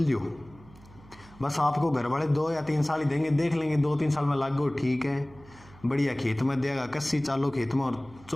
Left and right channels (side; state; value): right; noise; hum, 23 dB below the sound